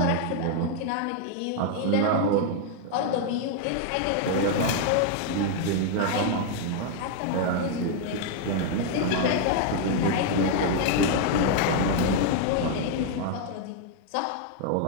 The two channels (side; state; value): both; different; correlation 0.00